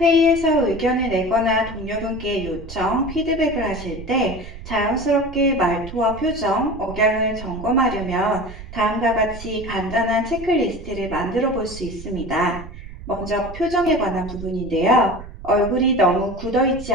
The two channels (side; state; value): right; noise; rumble, 13 dB below the sound